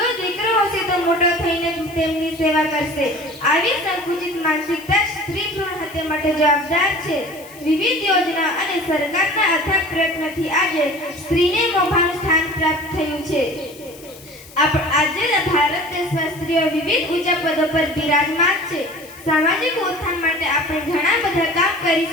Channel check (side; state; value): left; noise; hiss, 21 dB below the sound